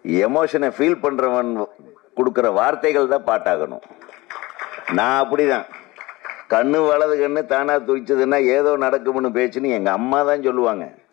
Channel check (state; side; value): quieter; right; 20.9 dB